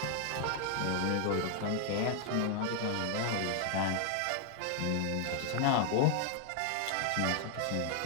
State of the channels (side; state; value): both; different; correlation 0.00